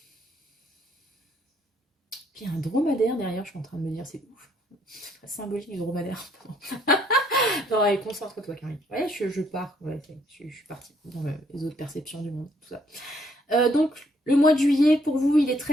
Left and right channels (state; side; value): normal; both; correlation 0.68